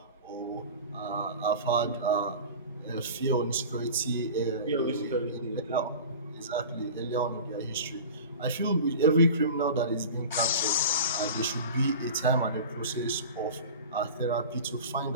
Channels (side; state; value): both; inverted; correlation -0.35